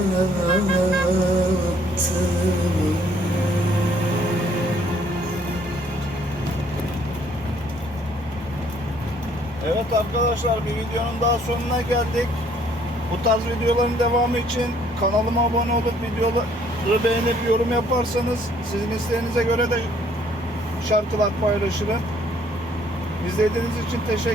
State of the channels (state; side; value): normal; both; correlation 0.63